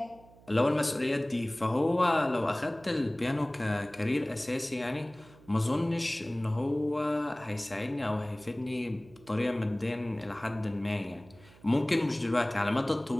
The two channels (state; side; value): noise; right; hum, 24 dB below the sound